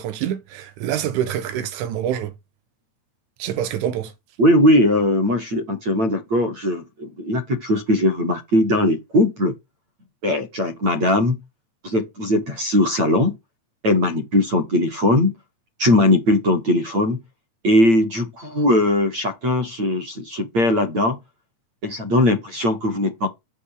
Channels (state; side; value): late; left; 8.8 ms